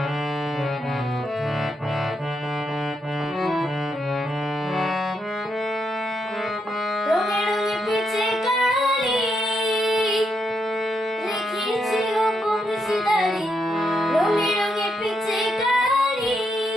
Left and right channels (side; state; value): both; normal; correlation 0.80